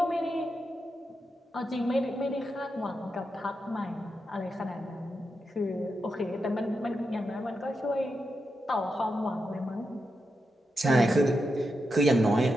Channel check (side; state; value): both; normal; correlation 0.87